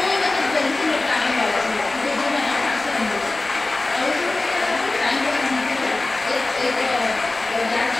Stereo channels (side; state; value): right; quieter; 3.1 dB